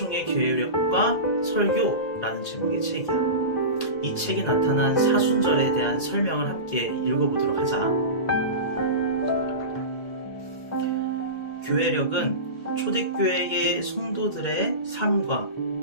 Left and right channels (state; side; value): late; right; 2.1 ms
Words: 교회력과 설교라는 제목의 책이야. 이 책에 나타난 사순절에 대한 설명을 함께 읽어보도록 하자. 교회력은 초대교회의 성도들의 삶과